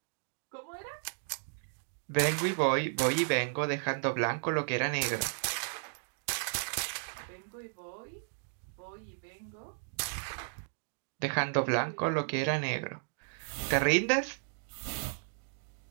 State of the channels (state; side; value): silent; left; digital silence